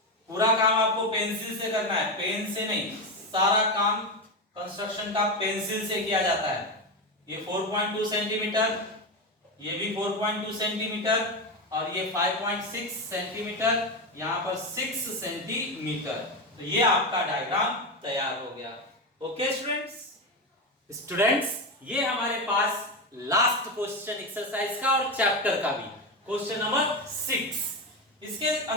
पूरा काम आपको पेंसिल से करना है, पेन से नहीं, सारा काम कंस्ट्रक्शन का पेंसिल से किया जाता है। ये 4.2 सेंटीमीटर, ये भी 4.2 सेंटीमीटर, और ये 5.6 सेंटीमीटर, यहां पर 6 सेंटीमीटर, तो ये आपका डायग्राम तैयार हो गया। ओके स्टूडेंट्स, ये हमारे पास लास्ट क्वेश्चन एक्सरसाइज का और चैप्टर का भी, क्वेश्चन नंबर 6। इसके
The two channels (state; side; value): normal; both; correlation 0.15